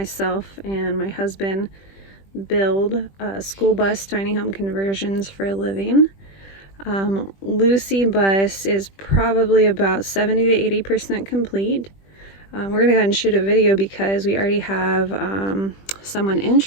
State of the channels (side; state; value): right; late; 20 ms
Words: and my husband build school bus tiny home conversions for a living. Lucy Bus is probably about 70 to 80% complete. We're going to go ahead and shoot a video because we already have someone